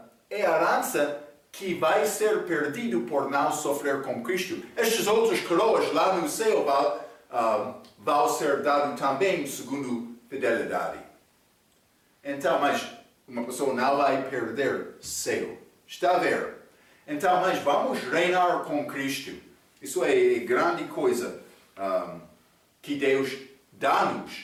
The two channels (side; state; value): both; identical; correlation 1.00